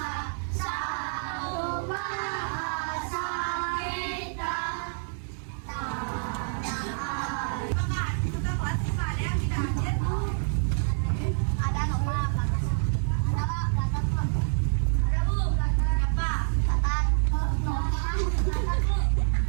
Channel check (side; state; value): left; silent; 59 dB below the other